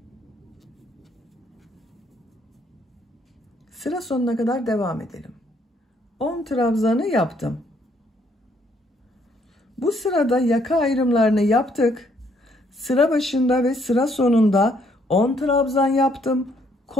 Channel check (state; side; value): normal; both; correlation 0.68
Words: Sıra sonuna kadar devam edelim. 10 trabzanı yaptım. Bu sırada yaka ayrımlarını yaptık. Sıra başında ve sıra sonunda 10 trabzan yaptım.